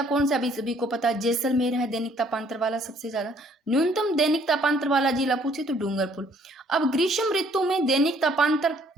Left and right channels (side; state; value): both; normal; correlation 0.62